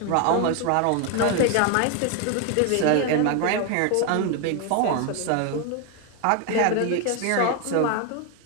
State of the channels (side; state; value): both; different; correlation 0.01